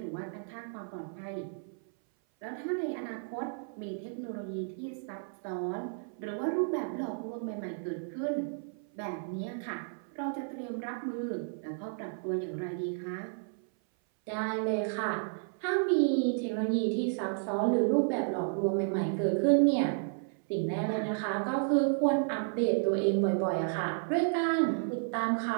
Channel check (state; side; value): silent; left; 56 dB below the other